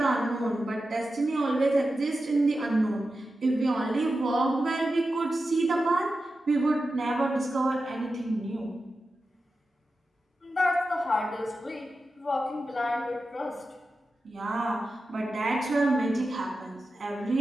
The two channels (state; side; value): normal; both; correlation 0.92